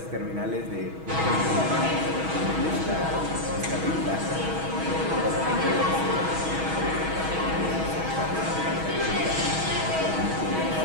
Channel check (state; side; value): late; left; 6.2 ms